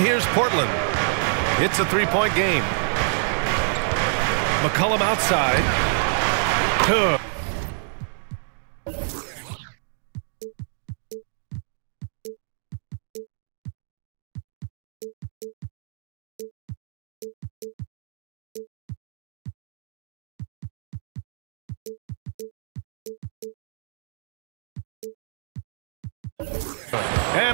Portland. It's a three-point game. McCollum outside. Good.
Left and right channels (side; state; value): left; silent; digital silence